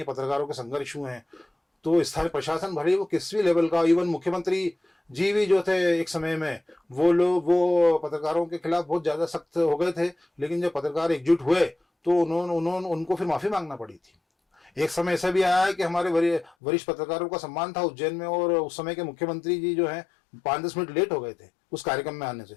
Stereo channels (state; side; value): drops out; right; at 16.5 s